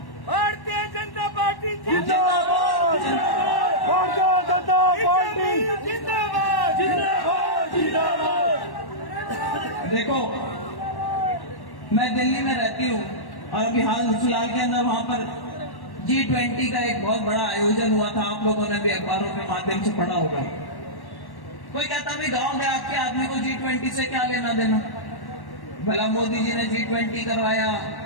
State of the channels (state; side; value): late; right; 1.1 ms